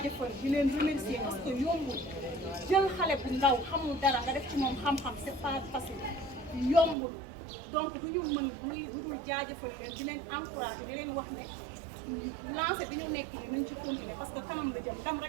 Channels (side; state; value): left; drops out; at 7.0 s